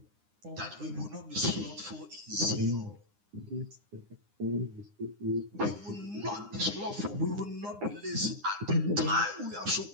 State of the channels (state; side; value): late; left; 9.8 ms